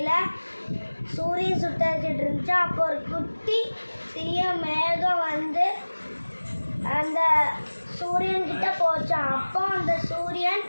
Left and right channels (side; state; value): both; inverted; correlation -1.00